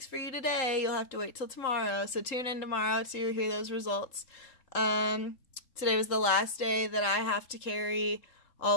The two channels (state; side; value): late; right; 3.8 ms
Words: for you today. You'll have to wait till tomorrow. So tune in tomorrow to hear those results. Today was the last day that I have to carry